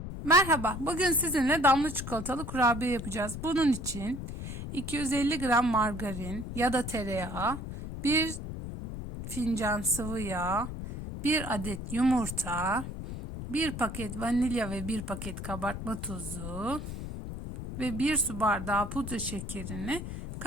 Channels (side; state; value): left; noise; rumble, 7 dB below the sound